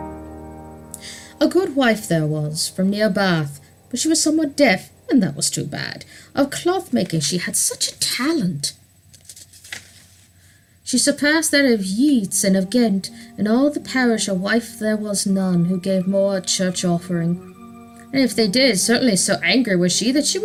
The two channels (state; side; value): identical; both; correlation 1.00